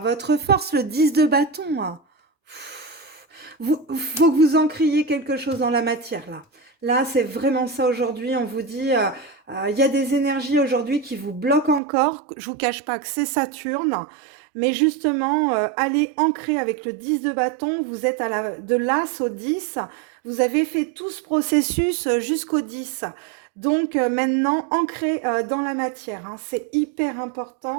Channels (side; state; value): left; drops out; at 11.8 s